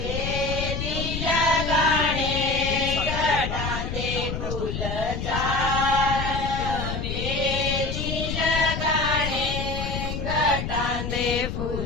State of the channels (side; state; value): left; noise; rumble, 4 dB below the sound